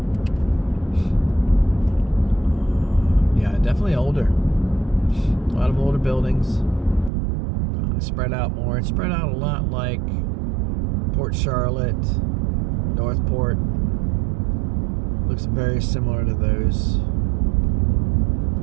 Yeah, definitely older. A lot of older buildings. Spread out more. It's spread out a lot like Port Charlotte, Northport. Looks very similar to those.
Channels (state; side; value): drops out; left; at 7.1 s